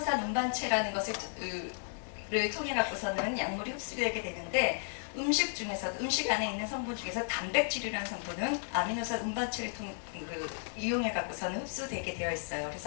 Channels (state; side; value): silent; right; digital silence